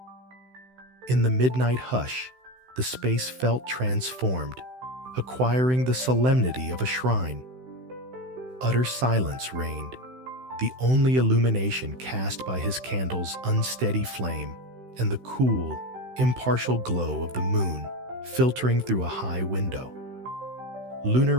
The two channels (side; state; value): left; late; 16 ms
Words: In the midnight hush, the space felt transformed, acquiring the solemnity of a shrine. Utter silence reigned, the only illumination cast by his candle's unsteady flame and the cool, impartial glow of the moon filtering through a high window. Lunar